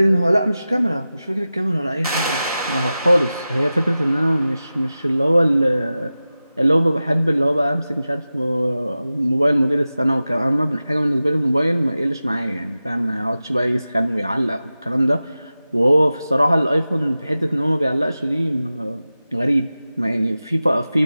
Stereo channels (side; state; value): both; inverted; correlation -0.95